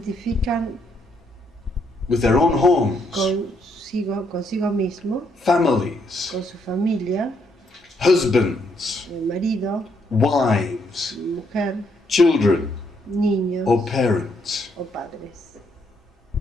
with their own homes, consigo mismo, families, con su familia, husbands, el marido, wives, mujer, children, niños or parents. o padres.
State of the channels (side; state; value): both; normal; correlation 0.74